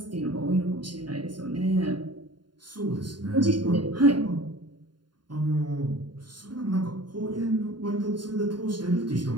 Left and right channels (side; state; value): left; late; 0.71 ms